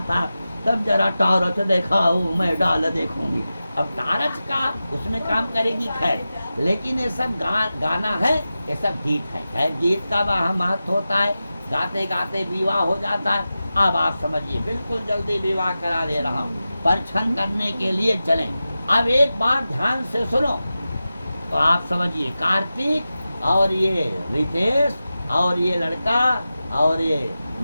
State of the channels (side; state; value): both; inverted; correlation -0.93